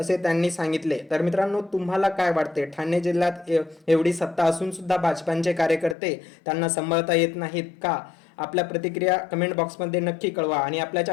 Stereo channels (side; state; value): right; drops out; at 6.0 s